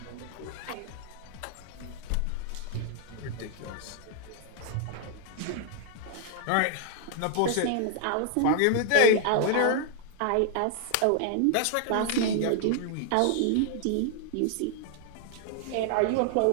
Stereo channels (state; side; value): different; both; correlation 0.00